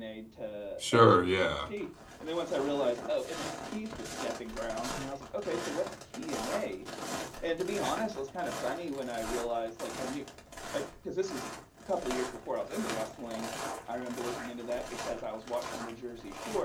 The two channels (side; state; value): both; identical; correlation 1.00